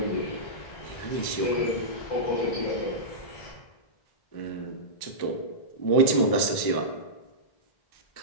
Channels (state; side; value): late; right; 1.1 ms